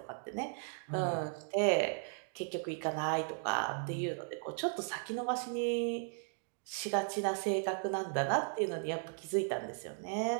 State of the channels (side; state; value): left; silent; 53 dB below the other